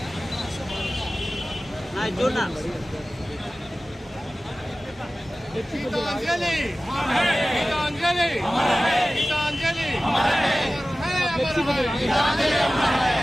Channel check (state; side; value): normal; both; correlation 0.96